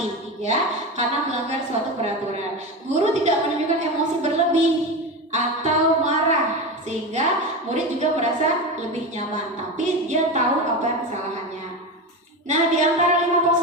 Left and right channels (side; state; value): both; normal; correlation 0.22